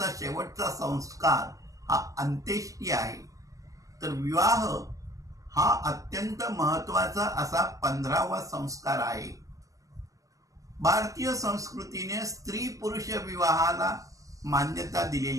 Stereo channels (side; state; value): left; late; 0.16 ms